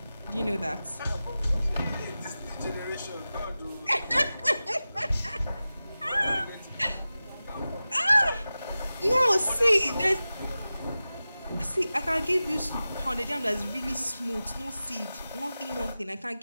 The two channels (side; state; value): both; inverted; correlation -0.95